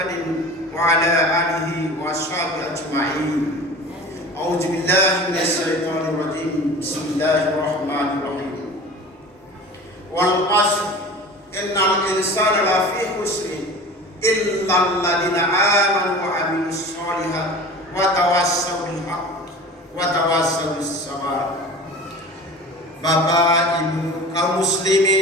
wa ala alihi wa ashabihi ajma'in. A'udzu billahi minasyaitonir rajim. Bismillahirrahmanirrahim. Wal 'ashr innal insana lafi khusrin illa alladziina aamanu wa 'amilus shalihaati wa tawassaw bil haqq wa tawassaw bis sabr. Bapak, Ibu, kaum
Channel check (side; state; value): both; normal; correlation 0.38